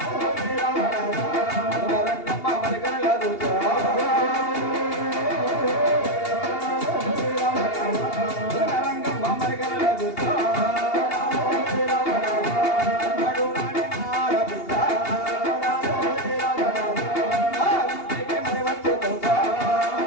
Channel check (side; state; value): right; late; 2.8 ms